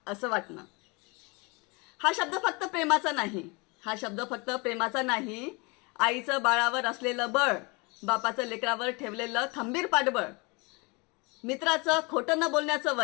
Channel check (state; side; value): quieter; right; 28.5 dB